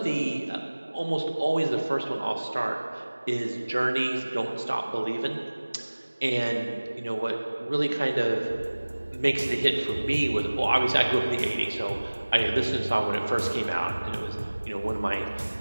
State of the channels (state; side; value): inverted; both; correlation -1.00